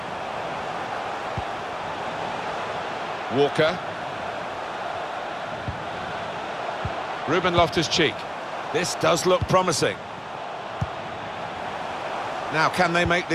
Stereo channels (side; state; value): both; identical; correlation 1.00